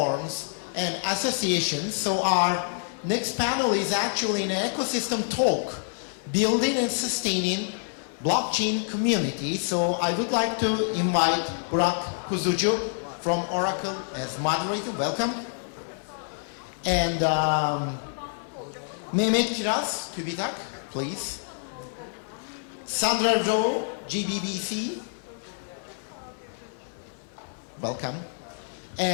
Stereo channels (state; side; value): silent; right; digital silence